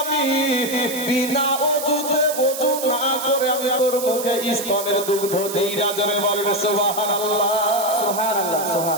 বিনা অজুতে ওযু না করে আমি তোর মুখে স্তনের দুগ্ধ দিই। রাজরে বলেন সুবহানাল্লাহ। সুবহানাল্লাহ।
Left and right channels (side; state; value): right; noise; hiss, 8 dB below the sound